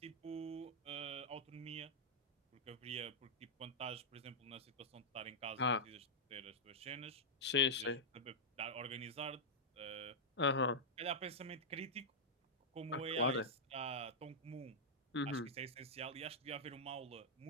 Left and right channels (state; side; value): normal; both; correlation -0.09